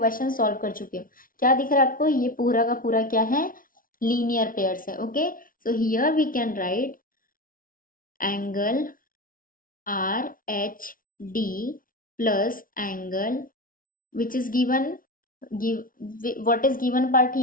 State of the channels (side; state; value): right; late; 0.40 ms